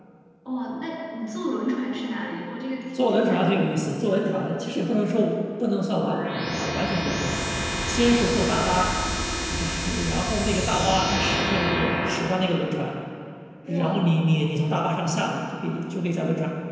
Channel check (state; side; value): identical; both; correlation 1.00